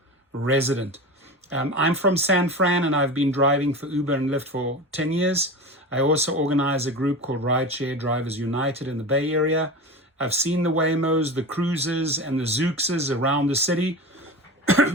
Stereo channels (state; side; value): normal; both; correlation 0.28